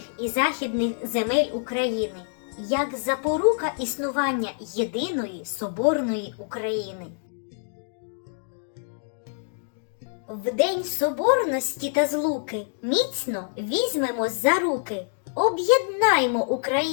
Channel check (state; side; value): silent; right; digital silence